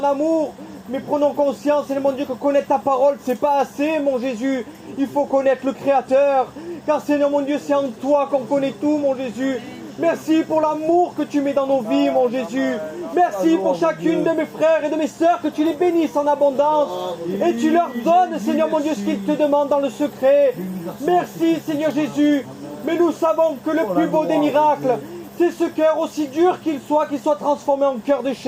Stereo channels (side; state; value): both; identical; correlation 1.00